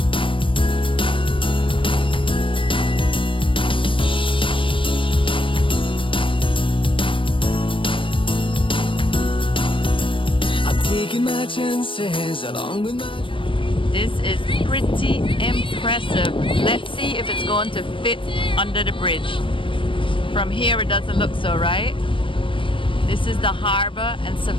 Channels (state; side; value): late; right; 0.25 ms